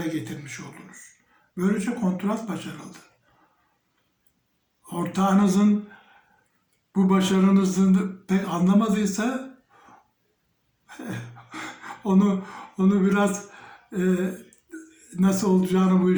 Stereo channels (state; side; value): identical; both; correlation 1.00